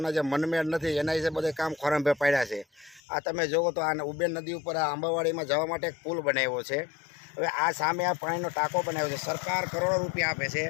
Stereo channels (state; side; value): drops out; right; at 3.0 s